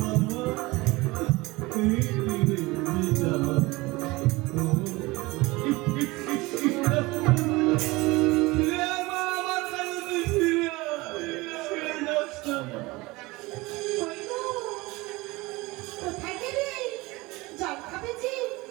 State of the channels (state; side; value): quieter; left; 22.0 dB